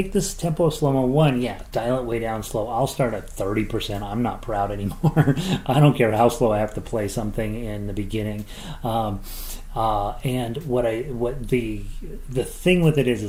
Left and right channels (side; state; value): both; identical; correlation 1.00